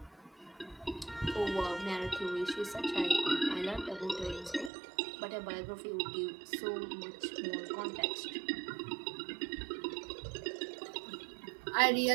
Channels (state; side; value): drops out; left; at 4.7 s